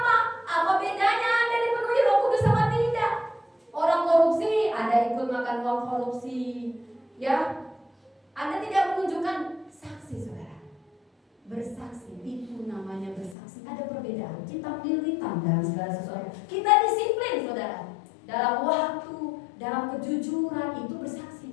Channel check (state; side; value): drops out; right; at 13.4 s